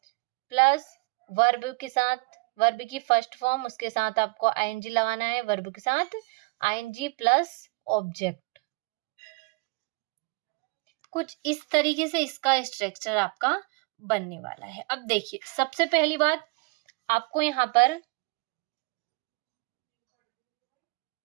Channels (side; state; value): left; quieter; 29.2 dB